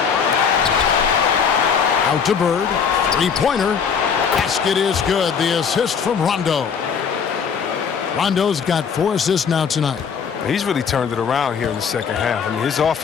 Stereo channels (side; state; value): right; quieter; 6.6 dB